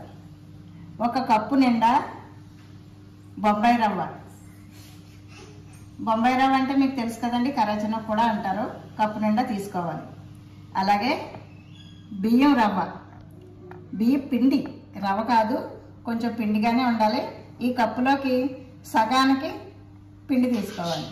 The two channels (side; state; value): both; identical; correlation 1.00